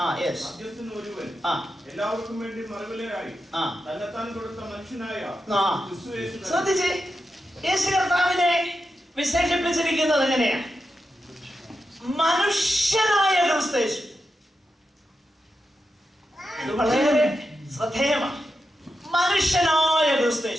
ഒരുവൻ, എല്ലാവർക്കും വേണ്ടി മറുവിലയായി തന്നെത്താൻ കൊടുത്ത മനുഷ്യനായ ക്രിസ്തുയേശു. ശ്രദ്ധിച്ചേ, യേശു കർത്താവിനെ വിശേഷിപ്പിച്ചിരിക്കുന്നത് എങ്ങനെയാ? മനുഷ്യനായ ക്രിസ്തുയേശു. ഇത് വളരെ ശ്രദ്ധേയമാണ്. മനുഷ്യനായ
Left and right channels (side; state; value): both; normal; correlation 0.88